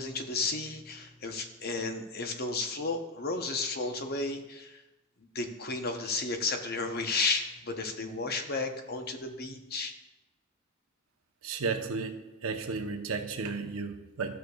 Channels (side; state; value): both; normal; correlation 0.05